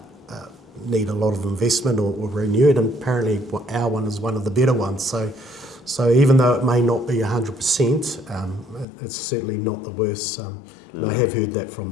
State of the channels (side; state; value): right; drops out; at 8.8 s